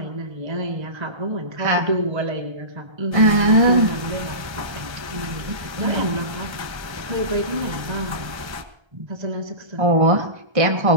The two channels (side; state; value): left; late; 1.3 ms